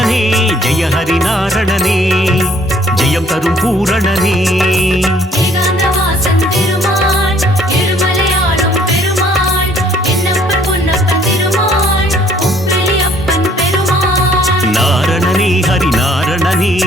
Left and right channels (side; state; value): both; normal; correlation 0.61